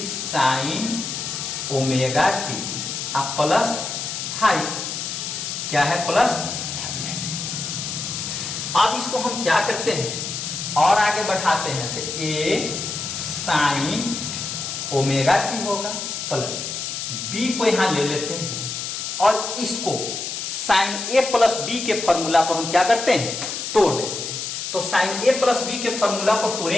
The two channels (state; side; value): noise; left; hiss, 5 dB below the sound